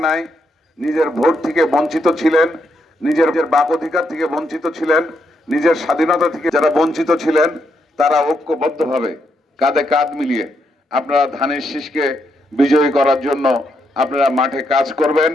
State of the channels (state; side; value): normal; both; correlation 0.79